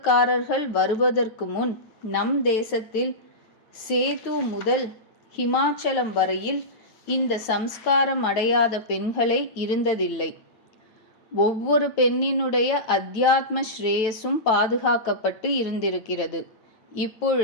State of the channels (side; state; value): right; late; 9.1 ms